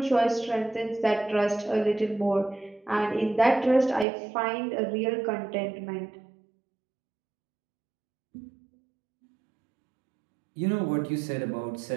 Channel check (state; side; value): drops out; left; at 4.0 s